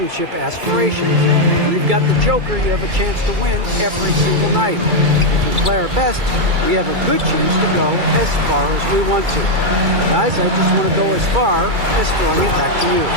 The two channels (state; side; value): late; left; 2.3 ms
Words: aspirations. We've got the Joker. You have a chance to win every single night. If we play our best, we have a good chance to go as far as we want to. Guys, I just want to go as far as throwing it back to you.